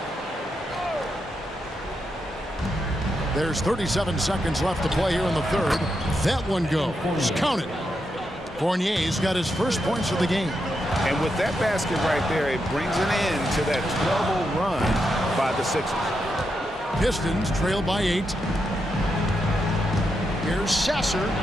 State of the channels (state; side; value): normal; both; correlation 0.84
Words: There's 37 seconds left to play here in the third. That one goes. Count it. Fournier's got his first points of the game. And with that basket right there, it brings an end to that 12-0 run by the Sixers. Pistons trail by 8. Here's Sasser.